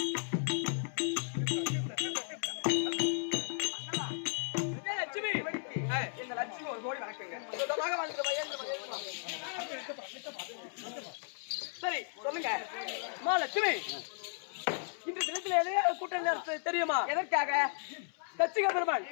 லட்சுமி. இந்த லட்சுமி ஒரு கோடி வணக்கங்க சுத்தமாக வாழ்ந்து சரி சொல்லுங்க அம்மா லட்சுமி. இன்று தினத்தில் எதையா கூட்டம் நடத்த தெரியுமா? எதற்காக? தச்சிக பெருமாள்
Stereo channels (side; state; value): right; silent; 54 dB below the other